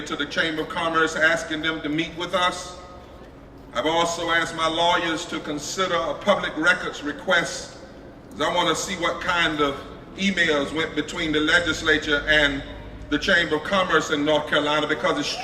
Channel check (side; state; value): both; identical; correlation 1.00